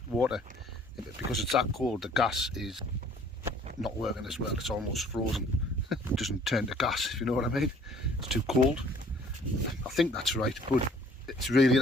water, because it's that cold, the gas is not working as well. It's almost frozen. It doesn't turn to gas, if you know what I mean. It's too cold. I think that's right, but it's really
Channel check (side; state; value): both; normal; correlation 0.56